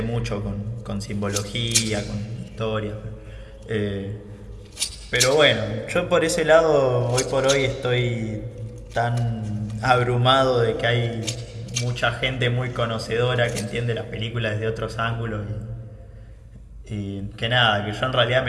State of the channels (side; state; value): both; identical; correlation 1.00